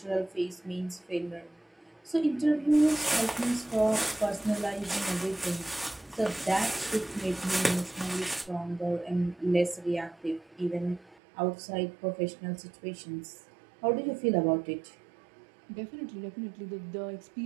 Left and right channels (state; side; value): drops out; left; at 11.2 s